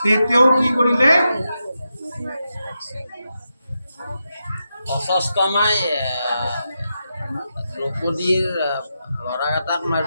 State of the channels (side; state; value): both; inverted; correlation -0.87